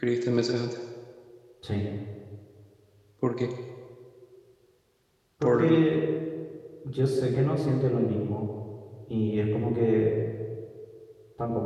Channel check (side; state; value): both; identical; correlation 1.00